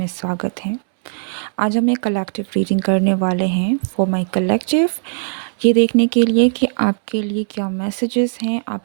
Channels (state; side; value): silent; left; digital silence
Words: स्वागत है। आज हम एक कलेक्टिव रीडिंग करने वाले हैं फॉर माय कलेक्टिव, ये देखने के लिए कि आपके लिए क्या मैसेजेस हैं,